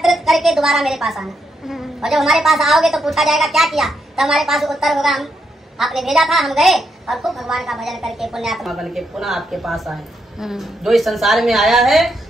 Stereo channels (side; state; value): both; normal; correlation 0.80